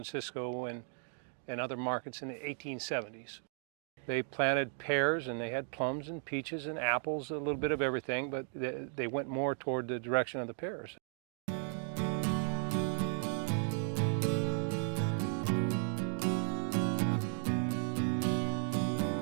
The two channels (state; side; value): silent; left; 54 dB below the other